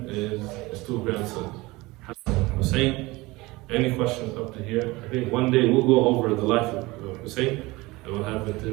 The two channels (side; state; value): left; quieter; 21.6 dB